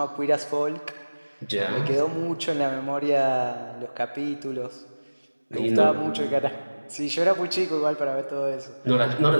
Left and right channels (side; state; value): both; inverted; correlation -1.00